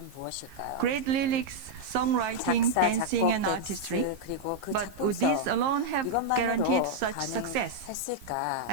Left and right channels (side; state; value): left; late; 15 ms